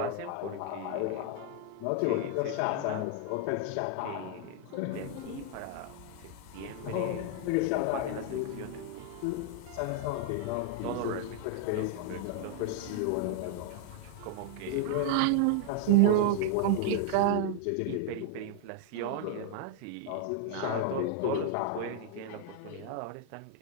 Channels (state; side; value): different; both; correlation 0.00